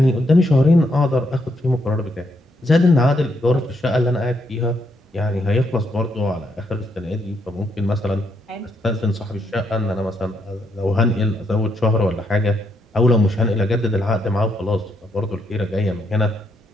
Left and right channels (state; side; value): normal; both; correlation 0.76